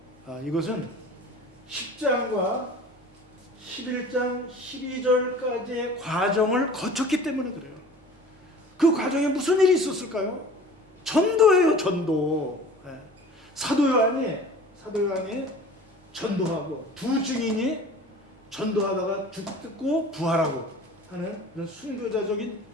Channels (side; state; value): both; normal; correlation 0.43